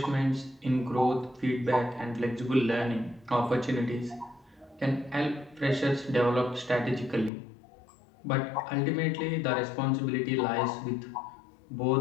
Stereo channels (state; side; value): drops out; right; at 7.3 s